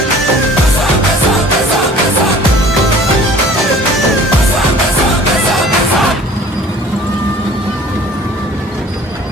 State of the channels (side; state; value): both; normal; correlation 0.49